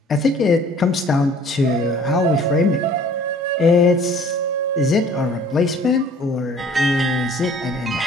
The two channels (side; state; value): both; normal; correlation 0.52